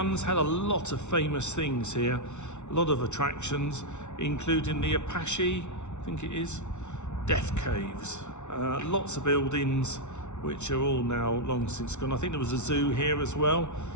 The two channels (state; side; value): late; right; 0.82 ms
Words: had a lot of famous things here, a lot of attractions, including the Apache, I think it is, Death Caves. Lots of buildings which are all now long since gone. I think there was a zoo here as well.